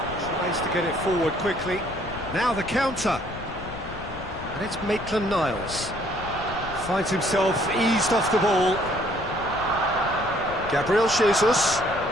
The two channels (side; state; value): left; noise; rumble, 13 dB below the sound